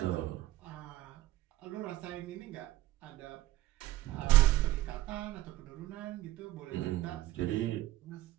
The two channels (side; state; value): left; quieter; 15.7 dB